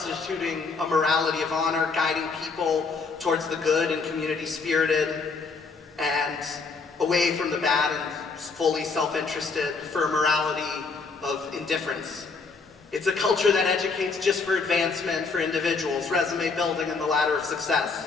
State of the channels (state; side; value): quieter; right; 4.5 dB